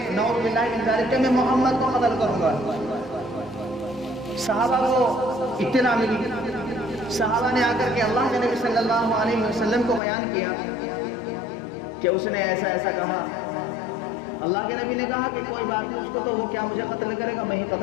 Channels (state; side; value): drops out; right; at 10.0 s